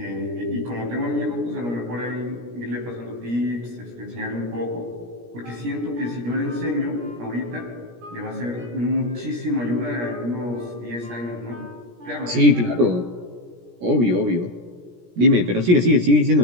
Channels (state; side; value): late; left; 17 ms